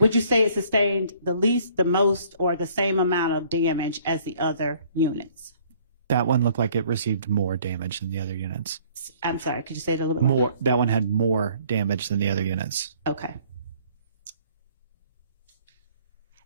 you say it sustained the least, the most, or the same amount of damage as the other units? That one looked like it received more damage than the other units. I'm sorry, could you say it a little bit More. That one had more damage than the other units. Okay.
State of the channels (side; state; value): both; inverted; correlation -0.58